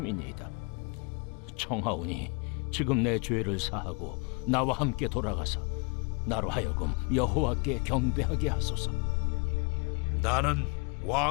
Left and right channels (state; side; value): quieter; right; 33.2 dB